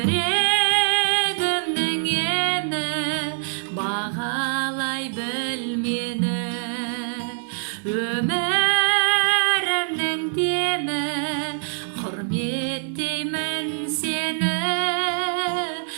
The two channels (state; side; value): silent; left; digital silence